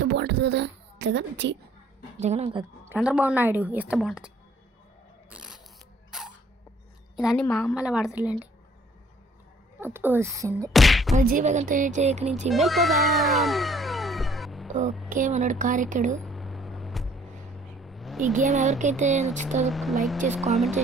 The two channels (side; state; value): both; normal; correlation 0.60